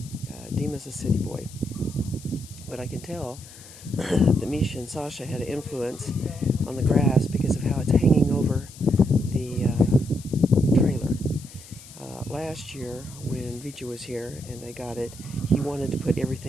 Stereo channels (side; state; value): left; noise; hiss, 19 dB below the sound